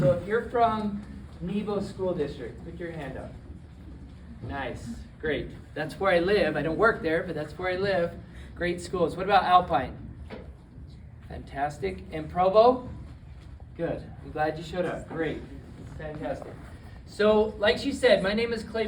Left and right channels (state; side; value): identical; both; correlation 1.00